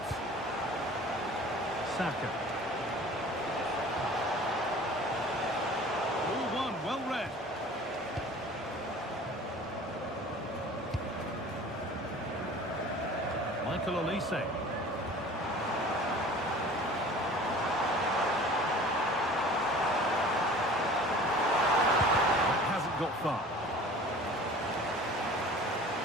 Saka. All one, well read. Michael Olise. Got far.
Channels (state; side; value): normal; both; correlation 0.44